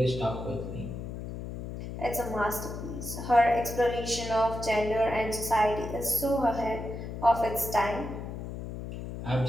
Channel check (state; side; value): noise; left; hum, 8 dB below the sound